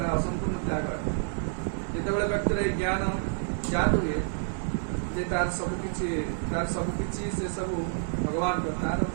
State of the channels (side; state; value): left; silent; digital silence